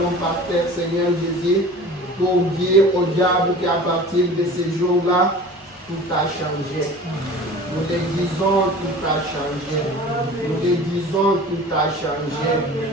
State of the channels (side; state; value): both; normal; correlation 0.40